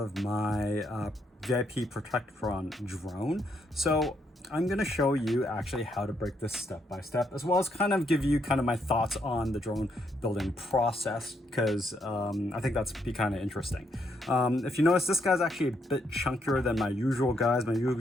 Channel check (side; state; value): both; normal; correlation 0.76